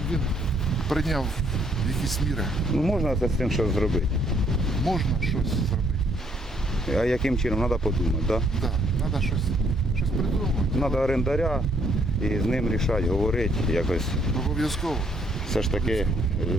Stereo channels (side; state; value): both; normal; correlation 0.68